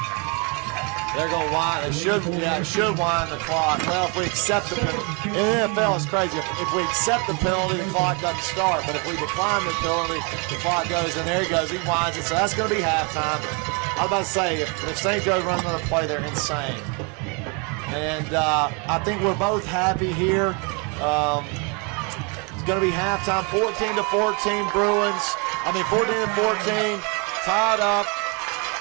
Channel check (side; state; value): left; quieter; 33.3 dB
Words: They're going to wind. It should wind the clock. Well, if we accept the penalty, in the NFL it's crazy. If we accept the penalty, the clock doesn't start. But if we decline the penalty, the clock goes. And there he goes. He winds it. So that's going to be halftime. was about to say, if St. Joe runs another play, they're insane. And I think we're both happy here. It's going to be halftime, 14-14 Bruins. 14-14, tied up.